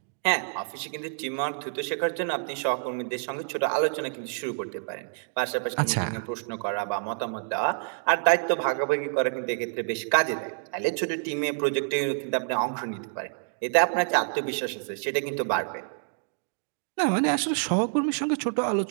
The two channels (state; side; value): silent; left; digital silence